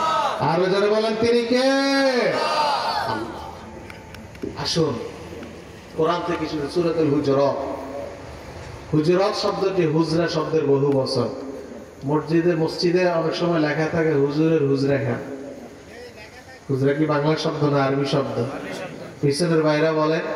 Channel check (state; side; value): identical; both; correlation 1.00